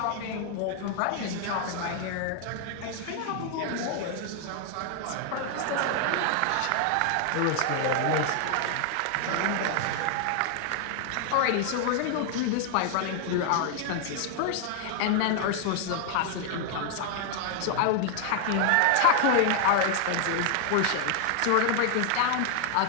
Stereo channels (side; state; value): both; different; correlation 0.00